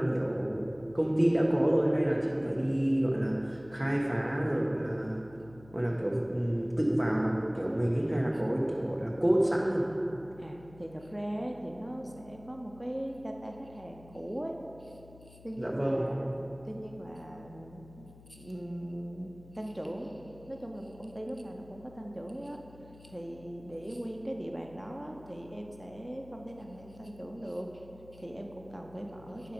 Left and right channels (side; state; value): left; noise; hum, 21 dB below the sound